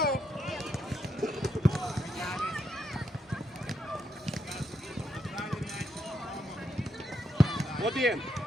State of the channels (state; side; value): normal; both; correlation 0.79